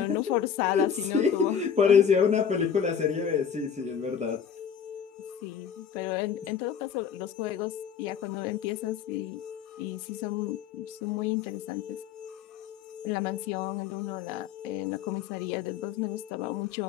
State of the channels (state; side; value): quieter; right; 7.7 dB